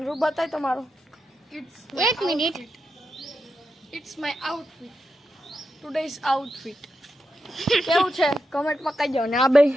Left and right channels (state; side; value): normal; both; correlation 0.87